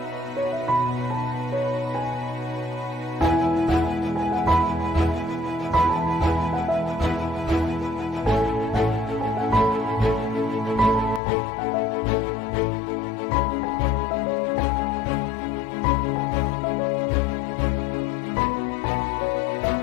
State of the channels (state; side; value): drops out; right; at 11.2 s